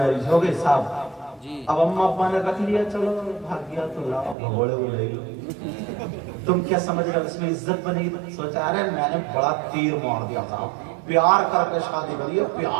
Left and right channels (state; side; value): drops out; left; at 4.4 s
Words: हो गई साहब, अब अम्मा अब्बा ने रख लिया, चलो भाग गया तो लाओ भगोड़े को ले लो। तुम क्या समझ रहे हो इसमें इज्जत बनेगी? सोचा अरे मैंने बड़ा तीर मार दिया था, प्यार करके शादी करी है,